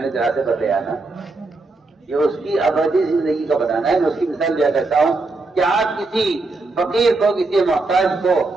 کے راستے پر لے آنا، یہ اس کی ابدی زندگی کا بنانا ہے۔ میں اس کی مثال دیا کرتا ہوں کہ آپ کسی فقیر کو، کسی محتاج کو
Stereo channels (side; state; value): left; quieter; 3.4 dB